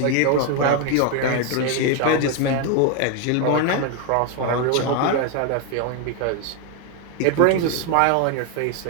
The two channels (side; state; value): both; different; correlation 0.01